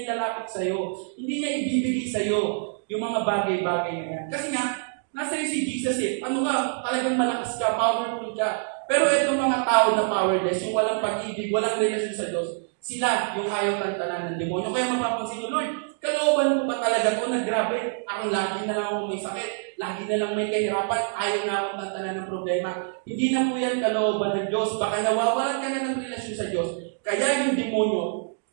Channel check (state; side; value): silent; left; digital silence